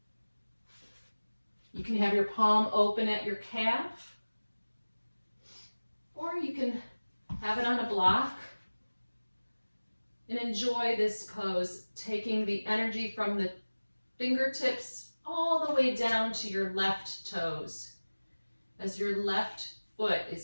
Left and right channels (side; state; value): both; inverted; correlation -1.00